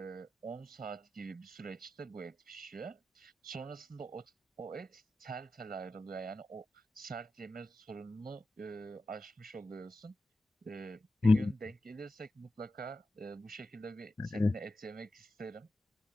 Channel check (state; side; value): normal; both; correlation 0.90